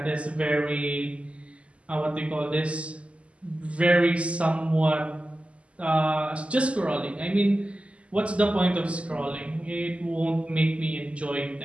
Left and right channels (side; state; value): left; late; 0.060 ms